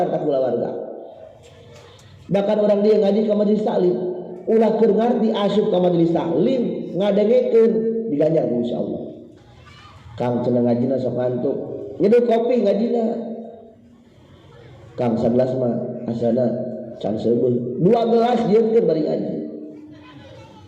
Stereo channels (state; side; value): identical; both; correlation 1.00